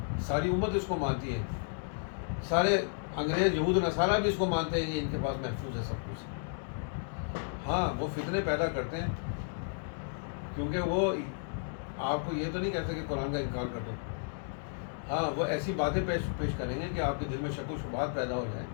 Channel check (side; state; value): right; silent; digital silence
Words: ساری امت اس کو مانتی ہے. سارے انگریز یہود و نصارہ بھی اس کو مانتے ہیں کہ ان کے پاس محفوظ ہے سب کچھ. ہاں وہ فتنے پیدا کرتے ہیں کیونکہ وہ آپ کو یہ تو نہیں کہتے کہ قرآن کا انکار کر دو. ہاں وہ ایسی باتیں پیش کریں گے کہ آپ کے دل میں شک و شبہات پیدا ہو جائیں